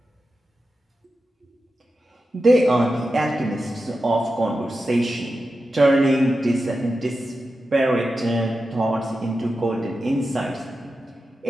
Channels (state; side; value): normal; both; correlation 0.91